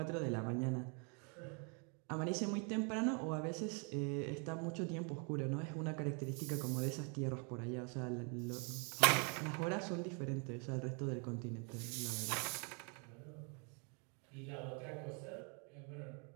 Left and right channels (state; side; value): quieter; left; 36.5 dB